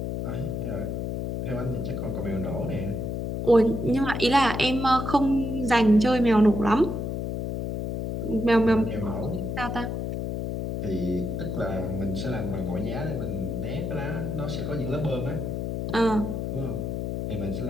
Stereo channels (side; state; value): left; noise; hum, 3 dB below the sound